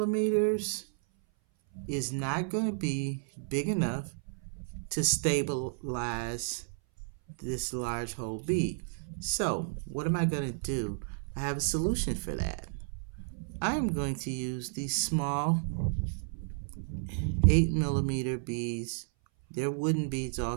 is not going to be big enough to stabilize this large hole bead. So what am I going to do? I have a solution for that. I am going to use these small 8 millimeter beads. They're wooden beads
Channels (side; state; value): left; silent; 56 dB below the other